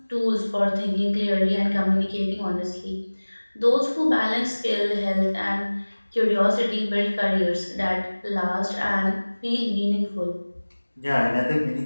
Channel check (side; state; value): both; inverted; correlation -1.00